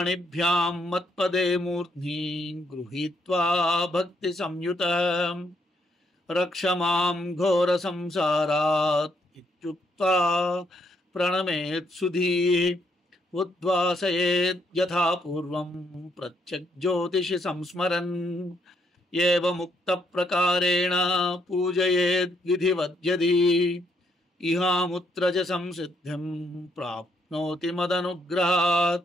మత్పదే మూర్ధ్ని గృహీత్వా భక్తి సంయుతః రక్ష మాం ఘోర సంసారాత్ ఇత్యుక్త్వా ప్రణమేత్ సుధీః ఉద్వాసయేత్ యథా పూర్వం ప్రత్యగ్జ్యోతిషి సంస్మరన్ ఏవముక్త ప్రకారేణ పూజయేద్ విధివద్యది ఇహాముత్ర చ సంసిద్ధిం ప్రాప్నోతి మదనుగ్రహాత్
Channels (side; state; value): both; normal; correlation 0.73